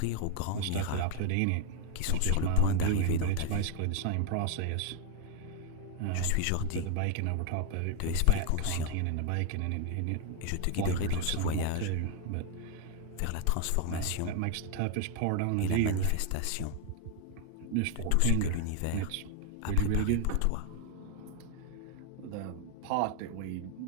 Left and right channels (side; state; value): both; different; correlation 0.00